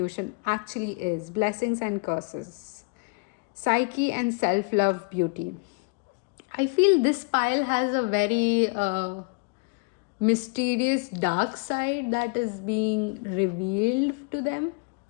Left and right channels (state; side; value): quieter; right; 33.7 dB